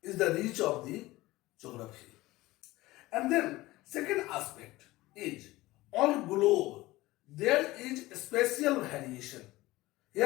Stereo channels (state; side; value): quieter; right; 18.8 dB